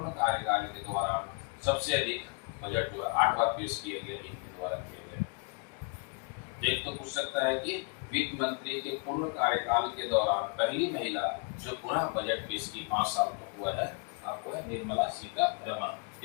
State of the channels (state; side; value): quieter; right; 36.0 dB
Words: कार्यकाल के दौरान सबसे अधिक बजट जो है 8 बार पेश किया गया, इनके द्वारा किया गया। एक तो पूछ सकता है कि वित्त मंत्री के पूर्ण कार्यकाल के दौरान पहली महिला जो पूरा बजट पेश की 5 साल तक हुआ है, आपको है निर्मला सीतारमण।